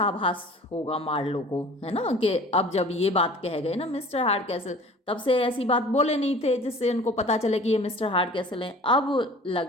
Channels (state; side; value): normal; both; correlation 0.45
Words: होगा मार्लो को, है ना, कि अब जब ये बात कह गए ना मिस्टर हार्ड कैसल, तब से ऐसी बात बोले नहीं थे जिससे उनको पता चले कि ये मिस्टर हार्ड कैसल हैं।